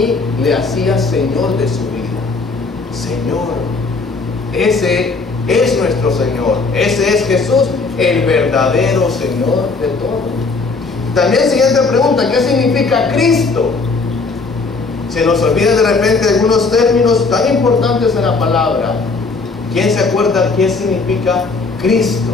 le hacía Señor de su vida. Señor, ese es nuestro Señor, ese es Jesús, el verdadero Señor de todo. También siguiente pregunta, ¿qué significa Cristo? Se nos olvida de repente algunos términos tan importantes en la palabra. ¿Quién se acuerda qué significa Cristo?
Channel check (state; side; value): quieter; right; 4.1 dB